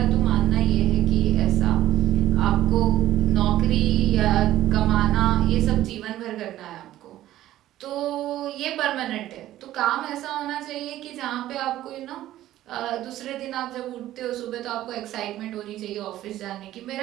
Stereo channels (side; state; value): left; quieter; 13.9 dB